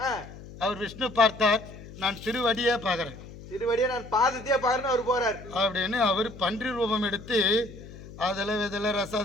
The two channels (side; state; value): left; noise; hum, 16 dB below the sound